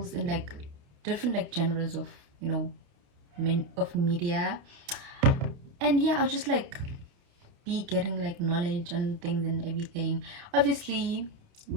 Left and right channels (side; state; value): left; late; 29 ms